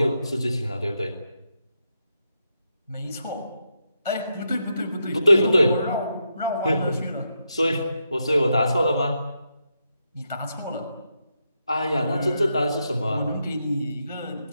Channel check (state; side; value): inverted; both; correlation -0.83